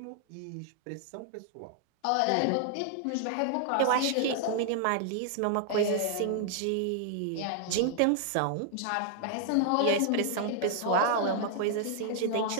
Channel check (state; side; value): different; both; correlation 0.00